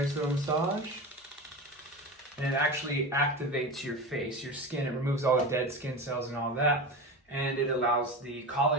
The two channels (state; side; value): normal; both; correlation 0.26